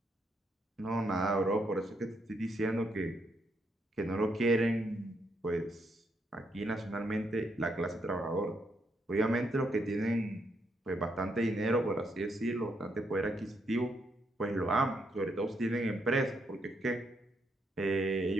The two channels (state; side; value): normal; both; correlation 0.77